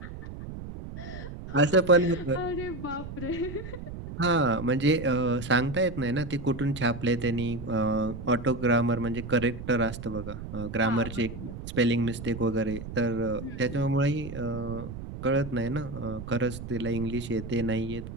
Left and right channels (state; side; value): noise; right; rumble, 10 dB below the sound